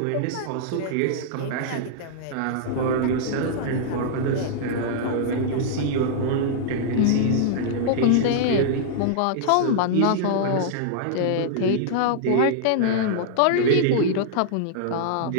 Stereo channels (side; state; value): both; different; correlation -0.02